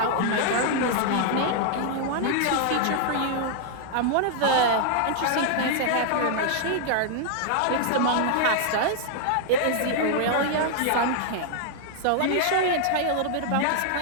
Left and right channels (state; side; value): different; both; correlation 0.00